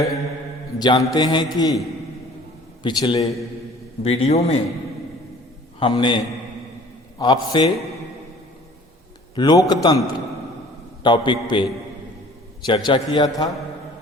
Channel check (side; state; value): both; normal; correlation 0.50